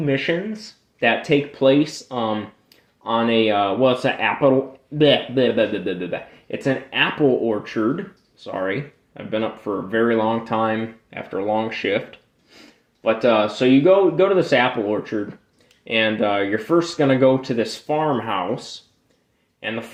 that take place on a it's an apple. Bleh, bleh, bleh, bleh, bleh, bleh. It's an apple orchard. Sorry, I've been up for a very long time after a long shift. But so you go to this apple orchard, and you're first gonna go to this farmhouse, and the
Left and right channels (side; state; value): both; identical; correlation 1.00